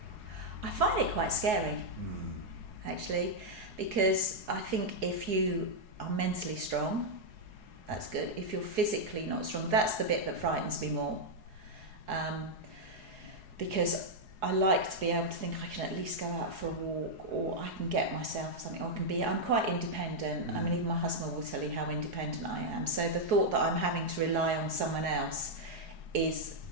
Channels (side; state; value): left; late; 4.7 ms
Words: I find it quite scary, actually, because I think if you are mentally strong, that's good. If you're physically not strong, that's the bit that frightens me more. Because I like to be able to think I can at least go out for a walk, or I can get myself something, or I'm quite independent. I mean, even my husband will tell you how independent I am. So the thought that I'm having to rely on someone else is